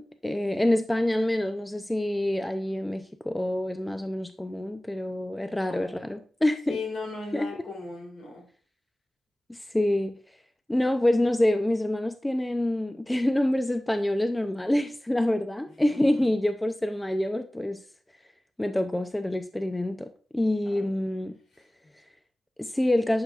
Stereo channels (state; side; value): normal; both; correlation 0.98